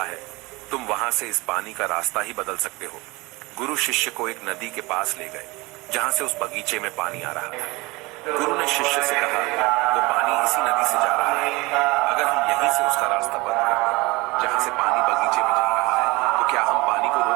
है, तुम वहां से इस पानी का रास्ता ही बदल सकते हो। गुरु शिष्य को एक नदी के पास ले गए जहां से उस बगीचे में पानी आ रहा था। गुरु ने शिष्य से कहा, वो पानी इसी नदी से जा रहा है। अगर हम यहीं से उसका रास्ता बंद कर दें, जहां से पानी बगीचे में जा रहा है, तो क्या हम पानी को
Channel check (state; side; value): quieter; left; 23.5 dB